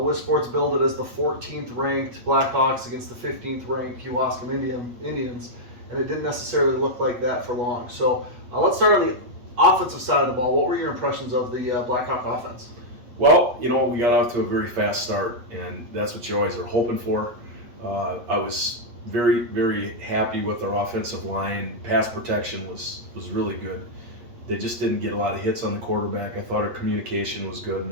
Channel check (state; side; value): late; left; 8.3 ms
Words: Sports billed it as the 14th ranked Blackhawks against the 15th ranked Kewaskum Indians, and it didn't necessarily look like that for long. So let's start on the offensive side of the ball. What were your impressions of the Blackhawk offense? Well, we got off to a very fast start, and that's what you always are hoping for. I was very, very happy with our offensive line. Pass protection was really good. They just didn't get a lot of hits on the quarterback. I thought our communication was good, and